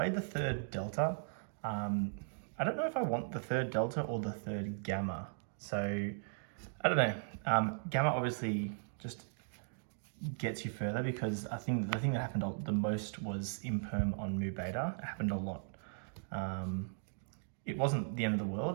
the 3rd Delta. I don't know if I want the 3rd Delta or the 3rd Gamma. So I don't know. Gamma obviously just gets you further because I think the thing that happened the most was imperm on Mu Beta. It happened a lot. It wasn't the end of the world,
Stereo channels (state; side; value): silent; left; digital silence